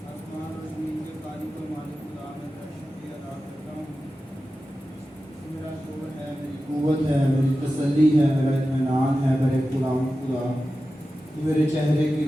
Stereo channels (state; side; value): normal; both; correlation 0.93